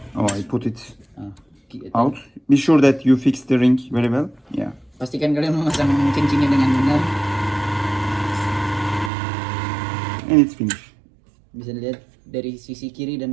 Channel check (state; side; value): drops out; left; at 9.1 s